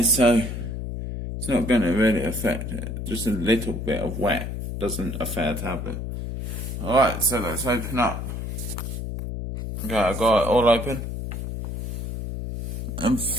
so it's not going to really affect it. Just a little bit of wet doesn't affect a tablet. Alright, so let's open up. Okay, I got it all open. And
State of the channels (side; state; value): left; noise; hum, 5 dB below the sound